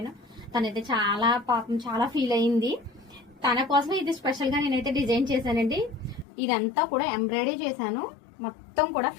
తనైతే చాలా పాపం చాలా ఫీల్ అయింది. తన కోసం ఇది స్పెషల్ గా నేనైతే డిజైన్ చేశానండి. ఇదంతా కూడా ఎంబ్రాయిడరీ చేశాను. మొత్తం కూడా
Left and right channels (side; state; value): right; drops out; at 6.2 s